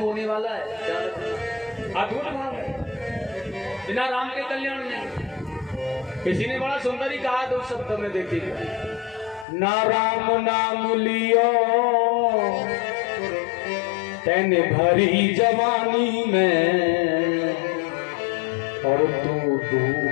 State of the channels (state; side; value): drops out; right; at 9.5 s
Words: वाला है, अद्भुत भाव है, बिना राम के कल्याण नहीं। किसी ने बड़ा सुंदर ही कहा दो शब्द में, देखिए, ना राम नाम लियो तेने भरी जवानी में, और तू